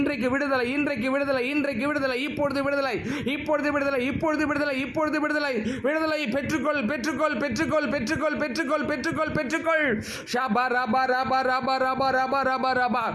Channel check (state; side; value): identical; both; correlation 1.00